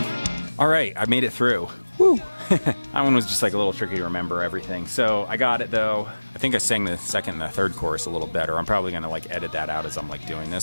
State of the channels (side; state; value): both; inverted; correlation -1.00